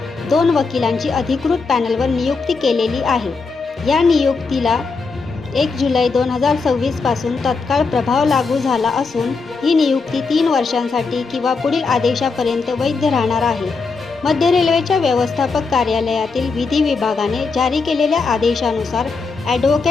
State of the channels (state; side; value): quieter; right; 4.4 dB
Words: 2 वकिलांची अधिकृत पॅनलवर नियुक्ती केलेली आहे। या नियुक्तीला 1 जुलै 2026 पासून तत्काळ प्रभाव लागू झाला असून ही नियुक्ती 3 वर्षांसाठी किंवा पुढील आदेशापर्यंत वैध राहणार आहे। मध्य रेल्वेच्या व्यवस्थापक कार्यालयातील विधी विभागाने जारी केलेल्या आदेशानुसार